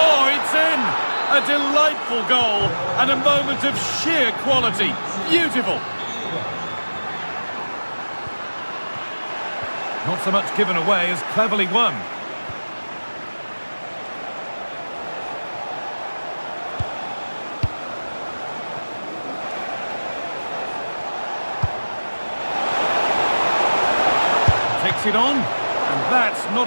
it's in. A delightful goal and a moment of sheer quality. Beautiful. Not so much given away as cleverly won. Takes it on, and that's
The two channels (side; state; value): both; inverted; correlation -1.00